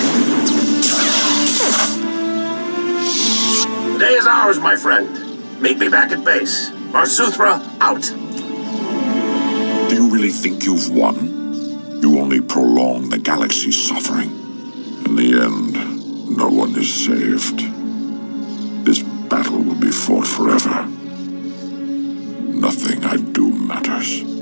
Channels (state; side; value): inverted; both; correlation -1.00